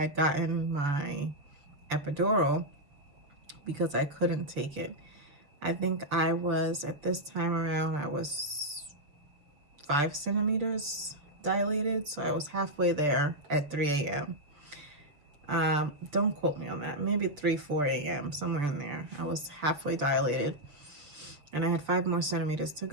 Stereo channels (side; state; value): left; late; 6.8 ms